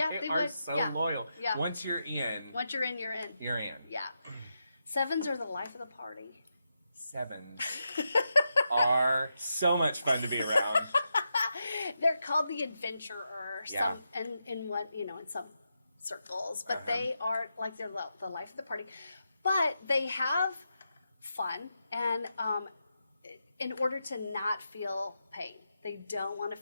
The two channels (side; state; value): both; inverted; correlation -0.86